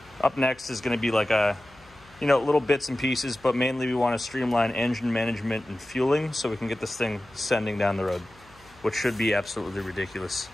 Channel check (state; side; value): noise; left; hum, 27 dB below the sound